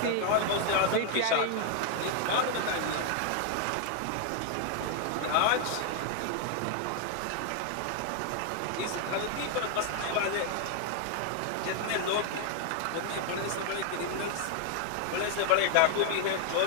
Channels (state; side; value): different; both; correlation 0.00